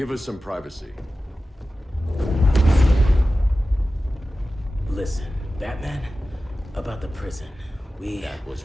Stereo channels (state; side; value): normal; both; correlation 0.94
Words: us some privacy. Listen, Batman, about the prison, That was